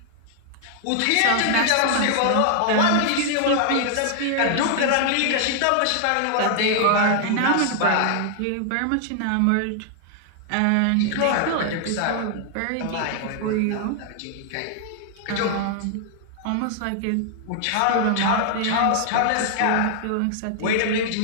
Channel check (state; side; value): different; both; correlation 0.00